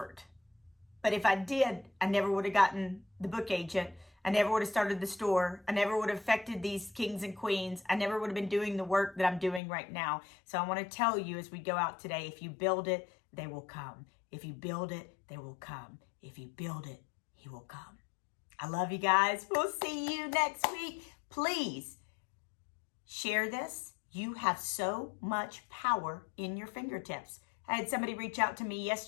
But if I did, I never would have gotten the book agent. I never would have started the store. I never would have affected these kings and queens. I never would have been doing the work that I'm doing right now. So I want to tell you as we go out today, if you build it, they will come. If you build it, they will come. If you build it, he will come. I love you guys. We'll see you next week. Please share this. You have so much power in your fingertips. I had somebody reach out to me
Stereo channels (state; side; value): drops out; right; at 9.6 s